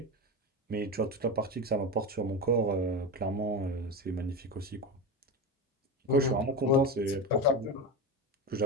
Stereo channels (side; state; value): both; normal; correlation 0.20